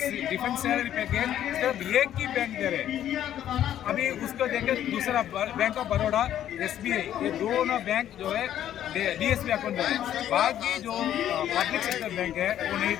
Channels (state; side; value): quieter; right; 11.2 dB